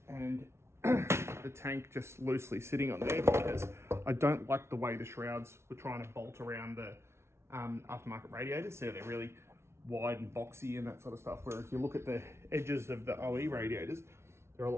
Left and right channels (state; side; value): late; left; 0.13 ms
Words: and the tank just loosely sitting on there because I don't like the way the shrouds were trying to bolt around the aftermarket radiators. So they're really wide and boxy and that sort of stuff. Where if you look at the edges of the OE radiators, they're a